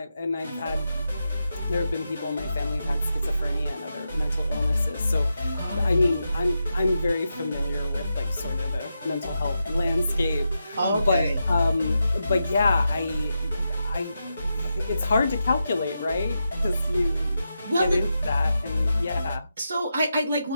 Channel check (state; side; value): inverted; both; correlation -0.87